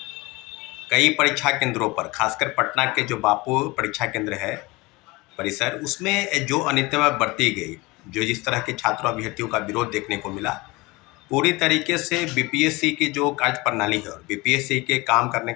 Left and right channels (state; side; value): quieter; right; 23.2 dB